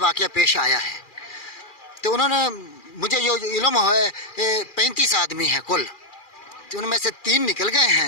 پیش آیا ہے۔ تو انہوں نے مجھے یہ علم ہے کہ 35 آدمی ہیں کل، تو ان میں سے 3 نکل گئے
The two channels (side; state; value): right; late; 2.4 ms